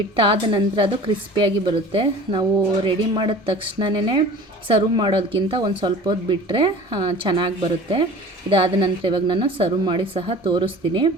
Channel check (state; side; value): normal; both; correlation 0.42